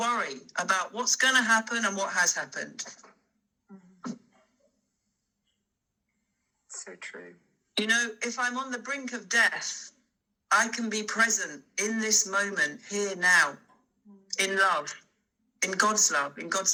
about what's going to happen and what has happened. So true. You know, if I'm on the brink of death, I can be present in this moment, here now, in love, in God's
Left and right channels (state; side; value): identical; both; correlation 1.00